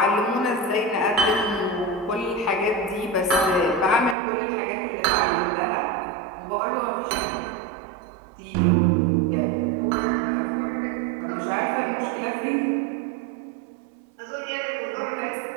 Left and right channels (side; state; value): left; drops out; at 4.2 s